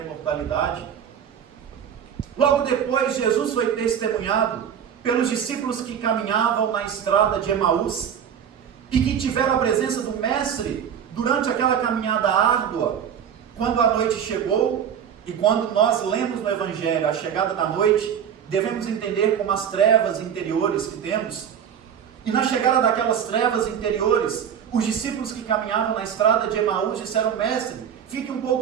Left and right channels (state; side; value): quieter; left; 8.4 dB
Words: Logo depois, Jesus foi testemunhado pelos discípulos que caminhavam na estrada de Emaús e que tiveram a presença do Mestre durante aquela caminhada árdua, quando a noite chegou. E quando nós lemos no Evangelho a chegada da noite, devemos entender como as trevas interiores que temos. E na chegada daquelas trevas interiores, os discípulos que caminhavam na estrada de Emaús disseram: Mestre, fique um